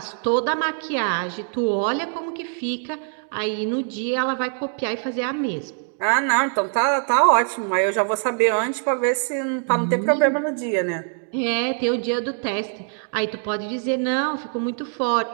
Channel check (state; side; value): silent; left; 60 dB below the other